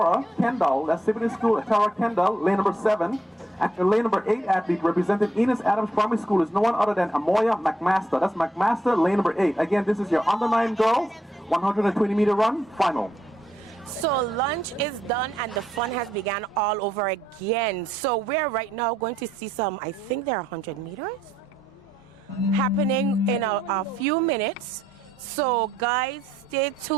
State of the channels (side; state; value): both; normal; correlation 0.75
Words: Kendall. That's Siboney School, Atara Kendall, lane number 7. And your lane number 8 athlete representing Enos Adams Primary School is no one other than Amoya McMaster. That's McMaster, lane number 8. Again, this is your under 9 girls 120-meter run final. So lunch is done and the fun has begun all over again. So we're right now going to see some, I think they're 100 meters happening in a few minutes. So guys, stay